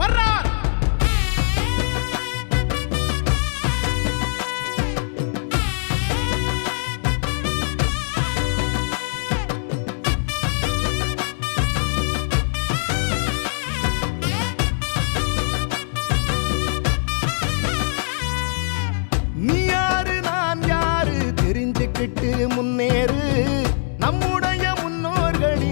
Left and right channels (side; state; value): right; silent; 64 dB below the other